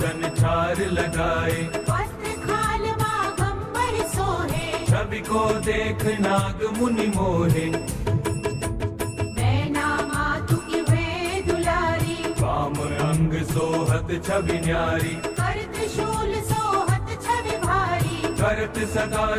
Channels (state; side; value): identical; both; correlation 1.00